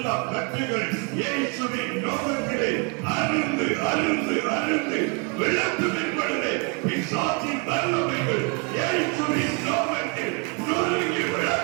கட்டுகள் இயேசுவின் நாமத்திலே அருந்து அருந்து அருந்து விளக்கும் என்பதை பிசாசின் வல்லமைகள்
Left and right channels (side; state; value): left; quieter; 31.8 dB